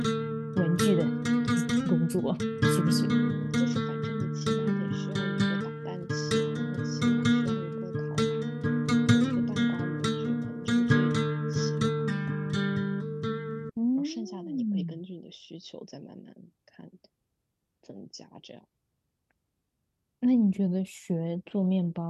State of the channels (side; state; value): both; identical; correlation 1.00